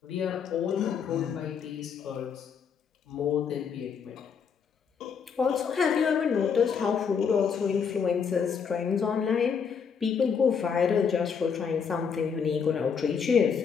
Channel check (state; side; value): quieter; right; 6.5 dB